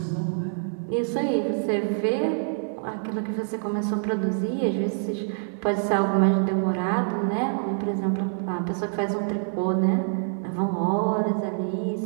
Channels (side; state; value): left; silent; digital silence